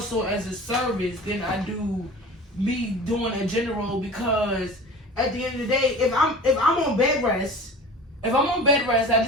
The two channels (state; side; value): normal; both; correlation 0.38